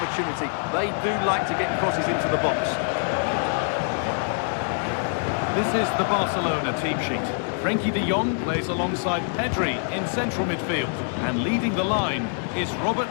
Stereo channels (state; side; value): silent; right; 62 dB below the other